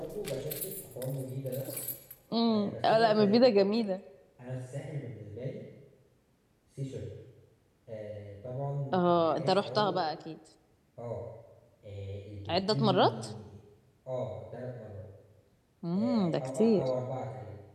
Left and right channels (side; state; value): both; identical; correlation 1.00